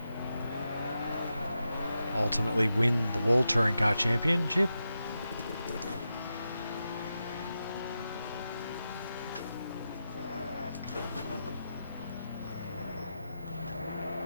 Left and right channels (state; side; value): inverted; both; correlation -0.89